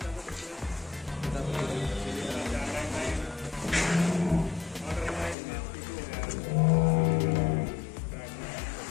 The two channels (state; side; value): drops out; right; at 5.4 s